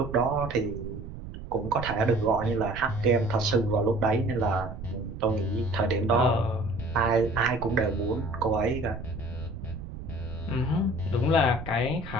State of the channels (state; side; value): noise; right; rumble, 10 dB below the sound